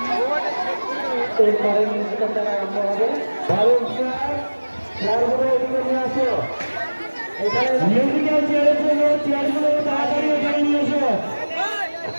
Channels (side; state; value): both; inverted; correlation -1.00